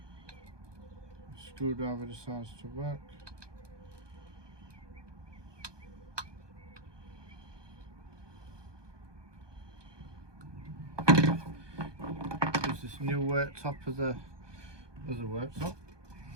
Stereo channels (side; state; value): left; late; 1.2 ms